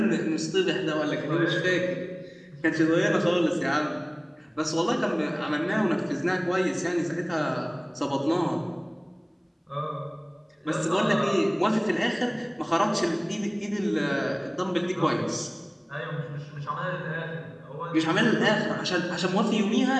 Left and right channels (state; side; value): identical; both; correlation 1.00